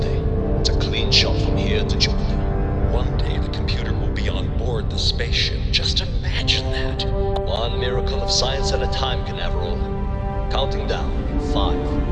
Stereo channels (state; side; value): identical; both; correlation 1.00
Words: It's a clean shot from here to Jupiter. One day the computer will be on board the spaceship. Just imagine that. One miracle of science at a time, Canaveral. Counting down.